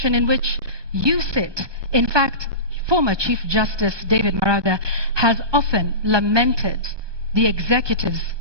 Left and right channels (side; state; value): left; late; 1.2 ms